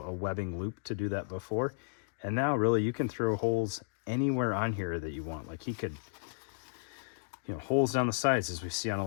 webbing loop to do that before. And now really you can throw holes anywhere on here that you want. Like he could, holes down the sides, as we see on a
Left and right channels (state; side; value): silent; right; digital silence